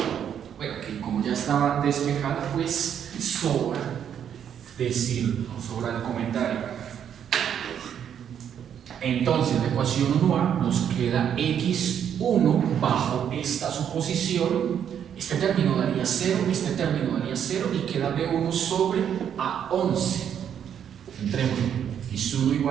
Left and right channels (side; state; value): left; quieter; 8.9 dB